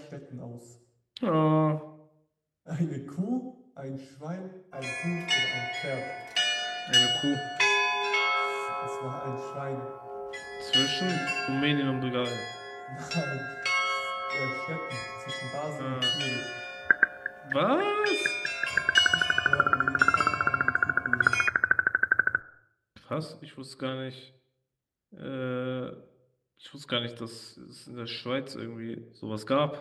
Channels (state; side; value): identical; both; correlation 1.00